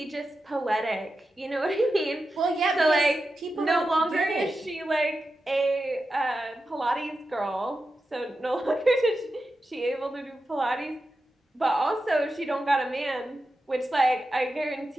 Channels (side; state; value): both; normal; correlation 0.90